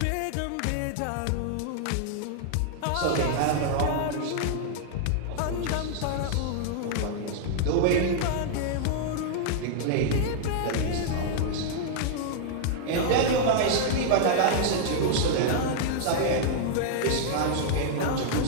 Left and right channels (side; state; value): both; different; correlation -0.01